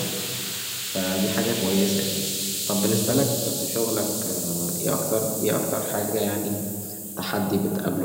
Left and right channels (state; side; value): identical; both; correlation 1.00